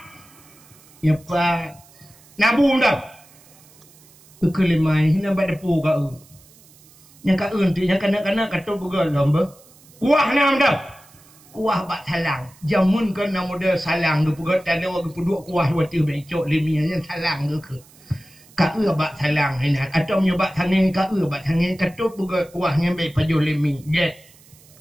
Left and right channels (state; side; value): noise; right; hiss, 26 dB below the sound